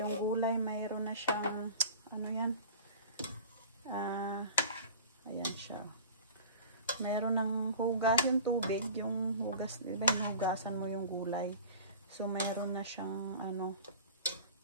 gulay, mayroon na na siyang, ano yan? Ayan siya. Meron ng hugas yung tubig, yung hugas, diba hinugasan mo yung gulay. So, meron na siyang, ano,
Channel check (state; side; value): inverted; both; correlation -0.39